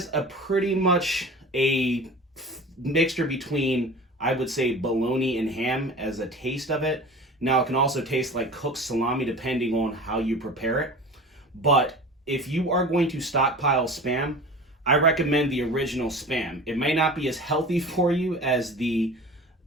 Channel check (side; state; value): both; normal; correlation 0.37